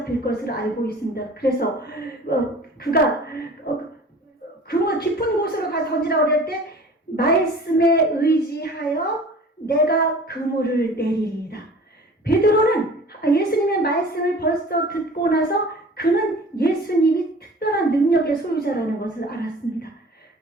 것을 알고 있습니다. 그래서 그가 그물 깊은 곳으로 가서 던지라고 그럴 때 말씀에 의지하여 내가 그물을 내리리이다. 베드로는 예수님의 말씀을 벌써 듣고 나서 그는 예수님이 특별한 능력의 소유자라는 것을 알았습니다.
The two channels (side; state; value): both; normal; correlation 0.44